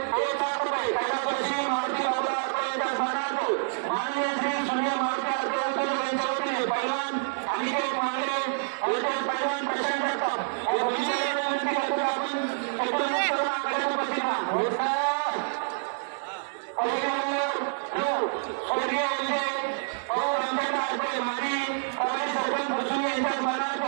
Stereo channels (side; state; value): left; silent; digital silence